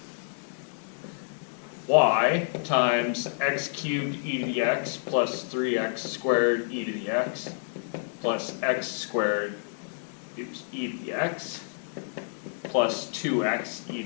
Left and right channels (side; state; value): right; silent; digital silence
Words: y times x cubed e to the x plus 3x squared e to the x plus x squared e to the x plus 2x e